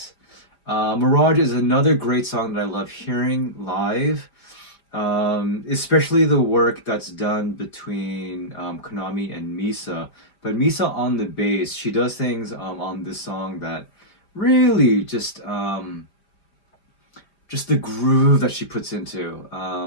Mirage is another great song that I love hearing live, especially the work that's done between Konami and Misa. But Misa on the bass, she does things on this song that really just the groove that she puts into.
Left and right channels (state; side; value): late; right; 5.1 ms